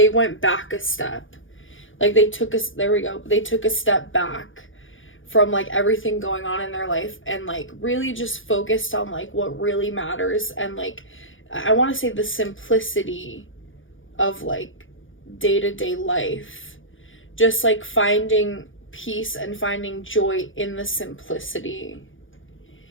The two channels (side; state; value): right; late; 0.57 ms